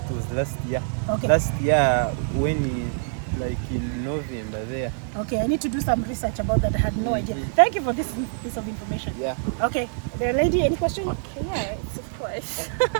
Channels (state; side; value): silent; left; digital silence